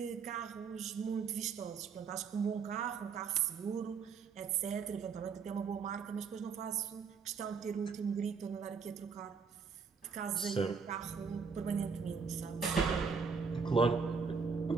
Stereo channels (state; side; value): quieter; left; 5.6 dB